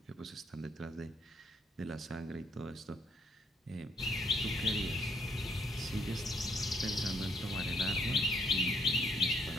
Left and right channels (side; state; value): both; normal; correlation 0.69